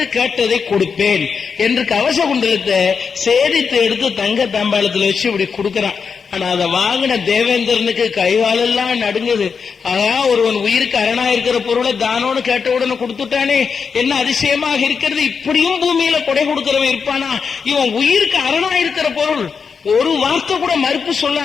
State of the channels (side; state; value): right; quieter; 5.8 dB